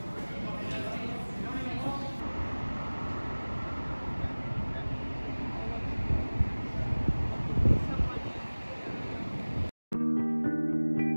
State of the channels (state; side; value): inverted; both; correlation -1.00